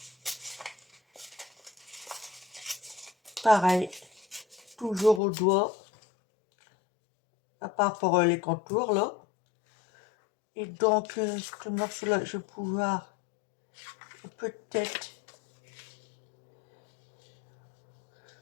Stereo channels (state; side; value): drops out; right; at 5.2 s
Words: Pareil. Toujours au doigt. À part pour les contours, là. Et donc, ce morceau-là, je vais pouvoir peut-être...